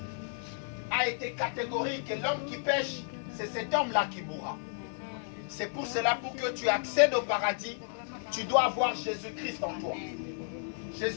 a été catégorique. L'homme qui pêche, c'est cet homme-là qui mourra. C'est pour cela, pour que tu accèdes au paradis, tu dois avoir Jésus-Christ en toi.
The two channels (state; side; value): silent; right; 56 dB below the other